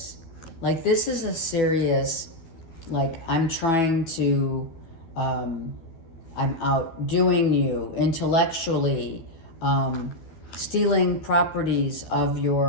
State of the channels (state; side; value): late; right; 12 ms